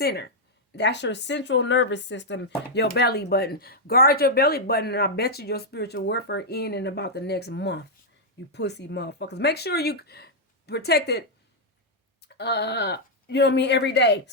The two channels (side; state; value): both; normal; correlation -0.04